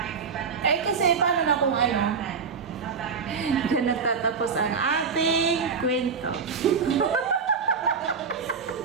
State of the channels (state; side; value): quieter; left; 5.7 dB